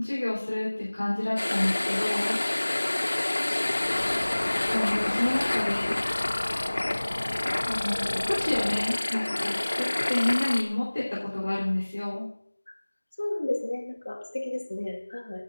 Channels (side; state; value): both; inverted; correlation -1.00